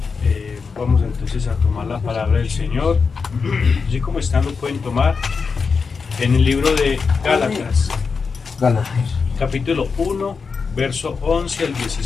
Vamos entonces a tomar la palabra del Señor. Así como están lo pueden tomar en el libro de Gálatas. Capítulo 1, verso 11 al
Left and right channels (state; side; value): quieter; right; 5.2 dB